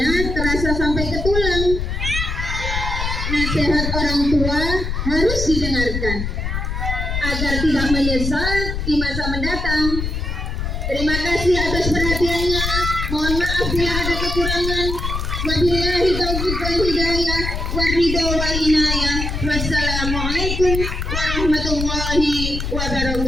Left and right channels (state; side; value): noise; left; rumble, 3 dB below the sound